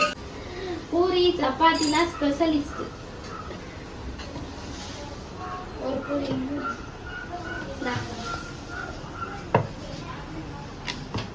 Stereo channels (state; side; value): identical; both; correlation 1.00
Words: பூரி சப்பாத்தினா ஸ்பெஷலிஸ்ட். ஒரு பூரி இந்தா.